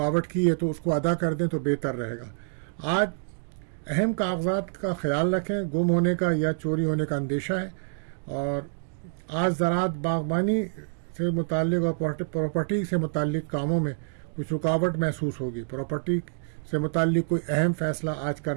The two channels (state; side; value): silent; left; digital silence